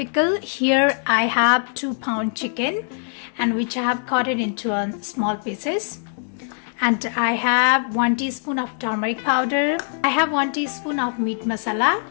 here I have 2-pound chicken and which I have cut it into small pieces. And I have 1 teaspoon of turmeric powder. I have 1 teaspoon of meat masala.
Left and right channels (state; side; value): silent; right; 64 dB below the other